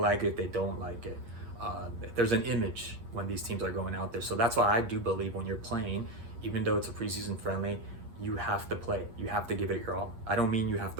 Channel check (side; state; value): left; late; 8.6 ms